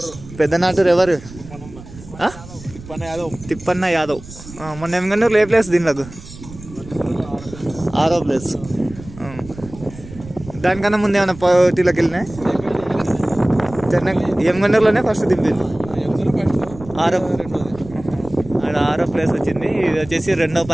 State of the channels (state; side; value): noise; right; rumble, 16 dB below the sound